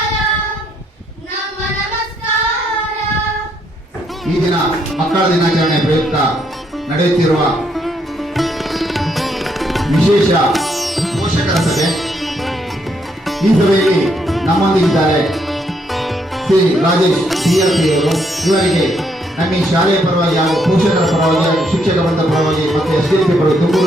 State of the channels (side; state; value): both; normal; correlation 0.74